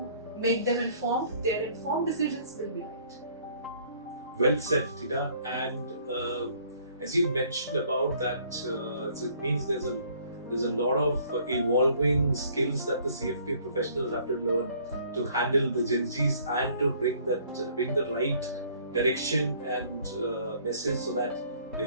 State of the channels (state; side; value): inverted; both; correlation -0.59